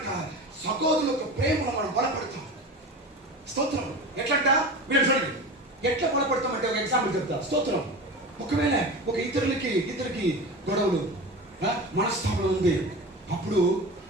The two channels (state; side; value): normal; both; correlation 0.30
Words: సహోదరుల యొక్క ప్రేమలో మనం బలపడతాం. స్తోత్రం. ఎట్లంట మీరు చూడండి. ఎట్లా బలపడతామంటే ఒక ఎగ్జాంపుల్ చెప్తా. స్తోత్రం. ఒకవేళ ఒక ఇద్దరికి గొడవలు మనస్తాపం ఉంది. అప్పుడు